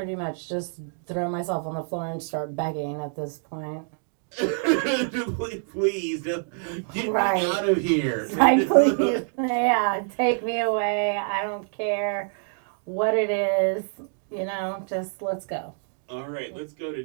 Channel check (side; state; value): left; silent; 60 dB below the other